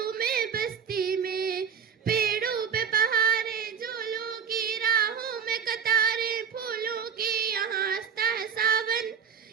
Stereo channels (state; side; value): quieter; left; 7.2 dB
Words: बस्ती में, पेड़ों पे बहारे झूलों की, राहों में कतारें फूलों की, यहाँ हंसता है सावन,